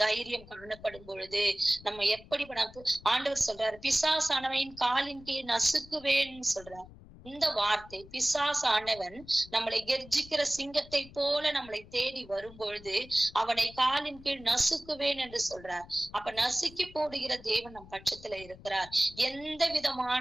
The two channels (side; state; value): left; noise; rumble, 20 dB below the sound